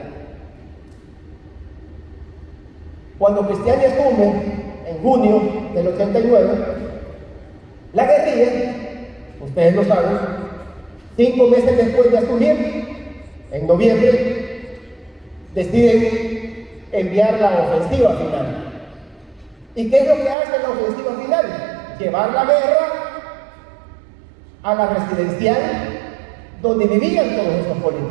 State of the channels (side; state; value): left; drops out; at 20.4 s